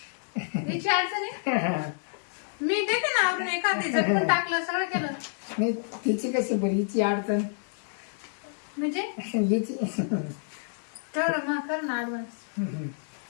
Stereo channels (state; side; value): silent; right; digital silence